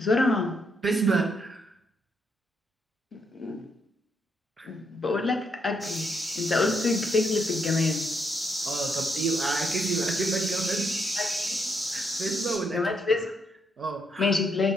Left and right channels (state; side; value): normal; both; correlation 0.77